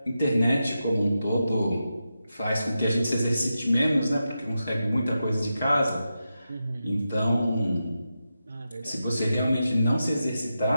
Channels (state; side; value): inverted; both; correlation -0.89